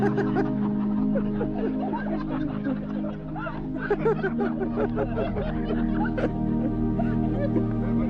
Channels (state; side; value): identical; both; correlation 1.00